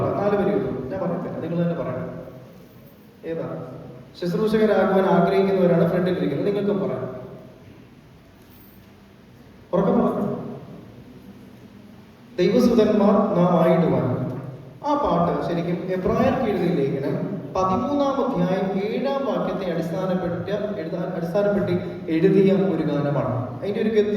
4 വരിയുള്ളൂ. ഞാൻ പറയത്തില്ല, നിങ്ങൾ തന്നെ പറയണം. ഏതാ? ശുശ്രൂഷകരാകുവാൻ ആഗ്രഹിക്കുന്നവരാണ് ഫ്രണ്ടിലിരിക്കുന്നത്. നിങ്ങൾക്കും പറയാം. ഉറക്കം പറഞ്ഞു. ദൈവസുതന്മാർ നാം ആയിടുവാൻ. ആ പാട്ട് ശരിക്കും എബ്രായർക്ക് എഴുതിയ ലേഖനം 13-ാം അധ്യായം 7-ാം വാക്യത്തെ അടിസ്ഥാനപ്പെടുത്തി എഴുതിയ ഒരു ഗാനമാണ്. അതിന്റെ ഒരു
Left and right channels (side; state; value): both; identical; correlation 1.00